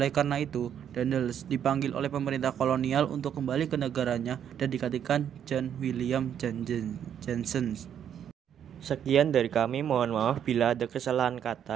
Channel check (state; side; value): quieter; left; 9.2 dB